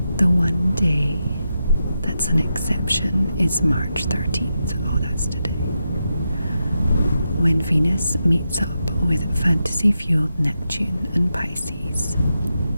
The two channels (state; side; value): inverted; both; correlation -0.87